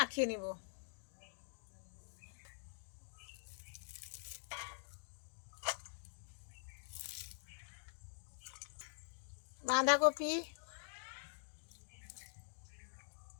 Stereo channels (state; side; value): silent; right; digital silence